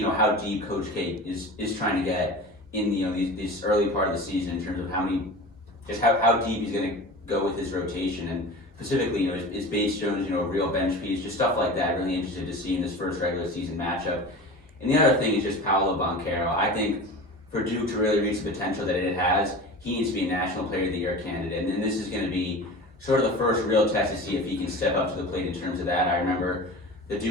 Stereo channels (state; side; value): normal; both; correlation 0.34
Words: how deep Coach K is trying to get in this early part of the season in terms of how deep he's going to go with his rotation, and specifically, is Bates Jones a real bench piece, just stuff like that. Really interested to see in this first regular season matchup. And the other thing is just Paolo Banchero. I think for Duke to really reach the potential that it has, he needs to be a National Player of the Year candidate, and this is going to be sort of the first real test to see if he can step up to the plate in terms of that. I remember the